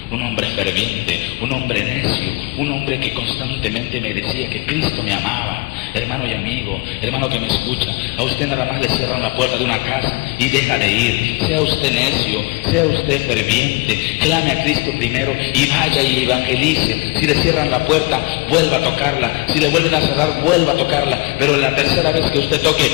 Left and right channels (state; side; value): quieter; right; 26.8 dB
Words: Un hombre ferviente, un hombre necio, un hombre que constantemente me decía que Cristo me amaba. Hermano y amigo, hermano que me escucha, a usted nada más le cierran la puerta de una casa y deja de ir. Sea usted necio, sea usted ferviente, clame a Cristo primero y vaya y evangelice. Si le cierran la puerta, vuelva a tocarla. Si le vuelven a cerrar, vuelva a tocarla. Pero la tercera vez que usted